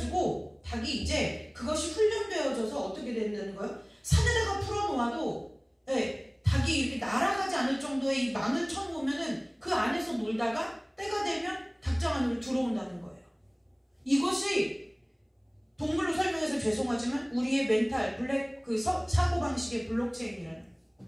닭이 이제 그것이 훈련되어져서 어떻게 된다는 거예요? 산에다가 풀어놓아도 네, 닭이 이렇게 날아가지 않을 정도의 이 망을 쳐놓으면은 그 안에서 놀다가 때가 되면 닭장 안으로 들어온다는 거예요. 이것이 동물로 설명해서 죄송하지만 우리의 멘탈 블랙 사고방식의 블록체인이라는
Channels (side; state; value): both; identical; correlation 1.00